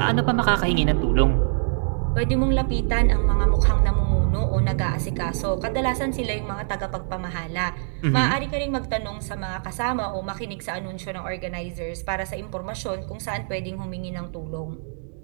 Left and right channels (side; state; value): left; silent; digital silence